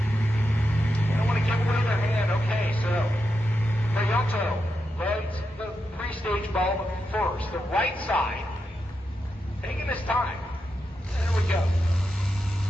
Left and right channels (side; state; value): both; normal; correlation 0.86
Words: They don't want to give away their hand. Okay, so Prionto lights the pre-stage bulb first. The right side, taking this time. There we go.